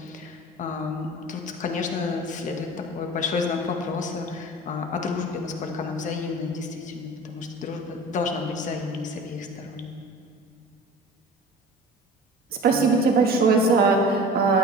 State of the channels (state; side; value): normal; both; correlation 0.40